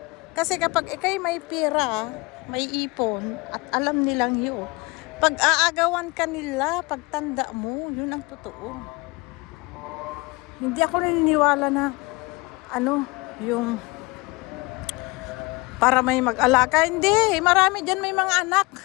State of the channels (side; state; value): right; quieter; 25.2 dB